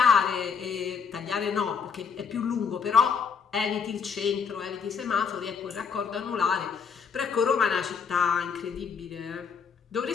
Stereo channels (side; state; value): right; quieter; 6.2 dB